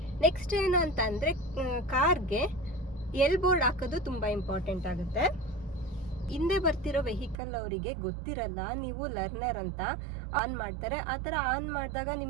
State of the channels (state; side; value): drops out; left; at 7.4 s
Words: ನೆಕ್ಸ್ಟ್ ಏನು ಅಂತ ಅಂದರೆ, ಕಾರ್ಗೆ ಎಲ್ ಬೋರ್ಡ್ ಹಾಕೋದು ತುಂಬ ಇಂಪಾರ್ಟೆಂಟ್ ಆಗುತ್ತೆ. ಹಿಂದೆ ಬರ್ತಿರೋ ವೆಹಿಕಲ್ ಅವರಿಗೆ ಗೊತ್ತಿರಲ್ಲ, ನೀವು ಲರ್ನರ್ ಅಂತ ಆನ್ ಮಾಡ್ತಾರೆ. ಆ ಥರ ಆನ್ ಮಾಡಿದಾಗ